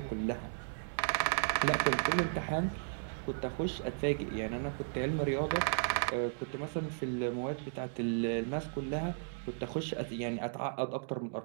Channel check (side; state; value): left; silent; digital silence